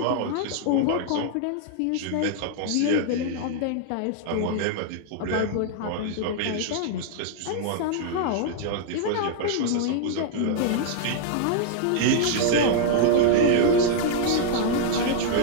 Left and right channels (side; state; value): both; different; correlation -0.01